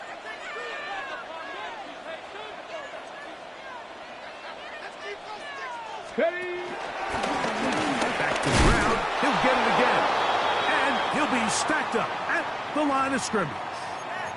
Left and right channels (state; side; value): identical; both; correlation 1.00